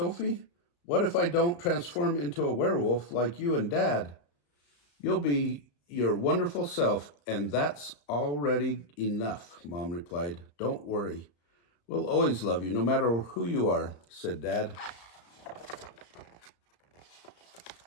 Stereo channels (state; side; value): late; right; 35 ms